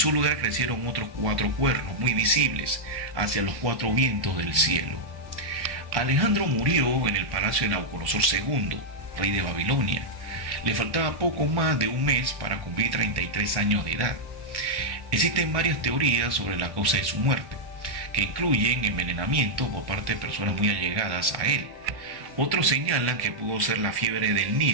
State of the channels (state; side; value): late; left; 1.1 ms